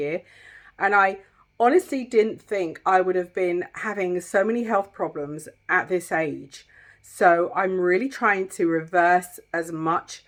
And I honestly didn't think I would have been having so many health problems at this age. So I'm really trying to reverse as much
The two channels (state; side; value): identical; both; correlation 1.00